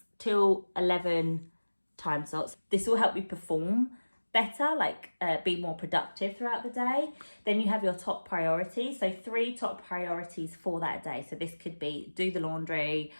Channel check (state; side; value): inverted; both; correlation -1.00